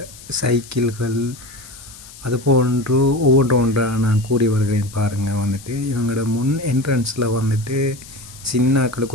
சைக்கிள்கள் அதுபோன்று ஒவ்வொன்றாக நான் கூறி வருகிறேன் பாருங்கள். இவங்களோட முன் என்ட்ரன்ஸில்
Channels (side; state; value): left; noise; hiss, 18 dB below the sound